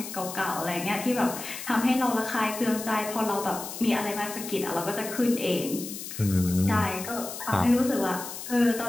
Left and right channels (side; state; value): left; noise; hiss, 9 dB below the sound